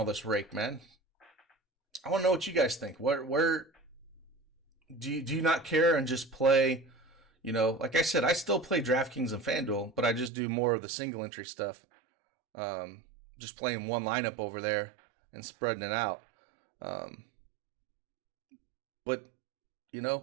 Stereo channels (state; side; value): drops out; left; at 10.3 s